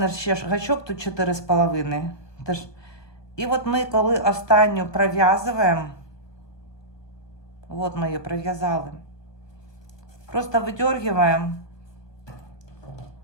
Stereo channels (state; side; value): late; right; 1.2 ms